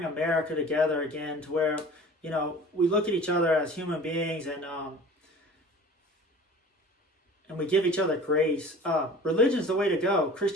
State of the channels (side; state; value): both; normal; correlation 0.42